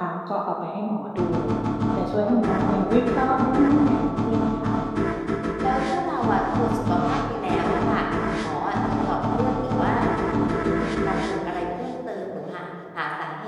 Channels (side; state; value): both; identical; correlation 1.00